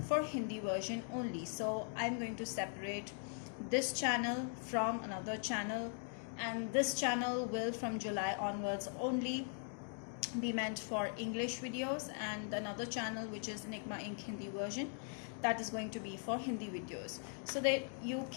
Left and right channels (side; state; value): right; silent; 51 dB below the other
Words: for Hindi version only, so I'm going to separate this channel from another channel, and this channel will from July onwards only be meant for English videos, and another channel which is Enigma Inc. Hindi version, that is going to be for Hindi videos, so that you